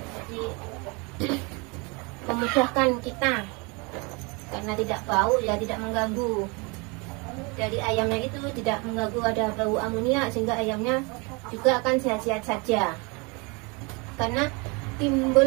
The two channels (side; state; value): left; quieter; 29.6 dB